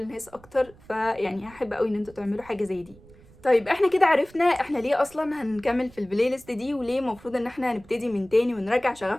اكتر. فيعني هحب قوي ان انتوا تعملوا حاجه زي دي. طيب احنا كده عرفنا احنا ليه اصلا هنكمل في البلاي ليست دي، وليه المفروض ان احنا هنبتدي من تاني ونرجع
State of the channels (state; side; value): noise; right; rumble, 25 dB below the sound